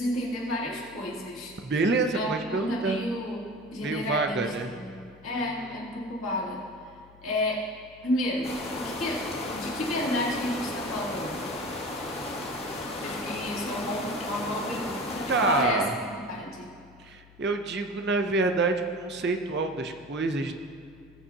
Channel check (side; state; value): left; noise; hum, 24 dB below the sound